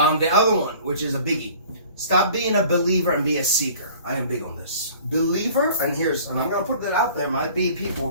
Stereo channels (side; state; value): both; inverted; correlation -0.48